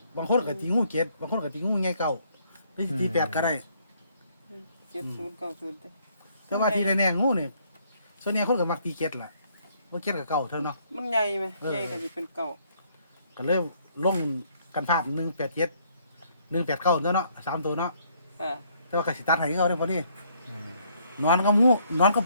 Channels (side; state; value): both; inverted; correlation -0.67